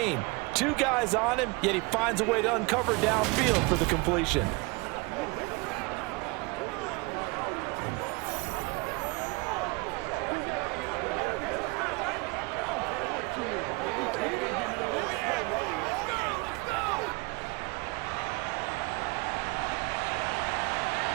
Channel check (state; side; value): quieter; left; 26.9 dB